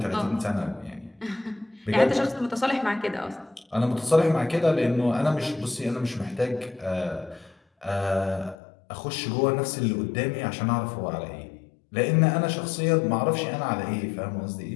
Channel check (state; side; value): drops out; right; at 8.6 s